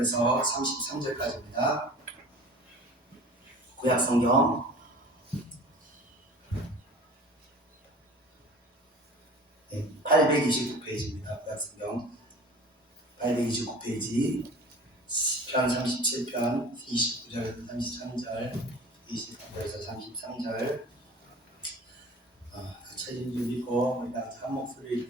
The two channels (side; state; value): both; normal; correlation 0.42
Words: 33절까지입니다. 구약 성경 829페이지입니다. 구약 성경 829페이지 시편 37편 29절에서 33절 23절에서 33절 책임 좀 읽고 우리 같이 한 목소리